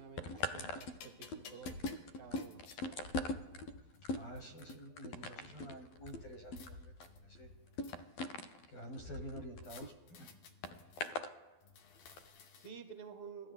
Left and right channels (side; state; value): right; late; 12 ms